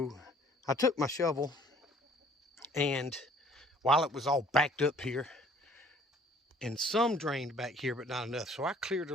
I took my shovel, and while it was all backed up here, and some drained back here, but not enough, so I cleared a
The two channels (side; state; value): both; normal; correlation 0.56